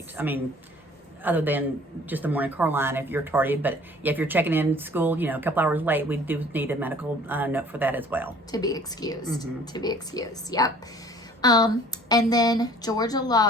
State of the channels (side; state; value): both; normal; correlation 0.51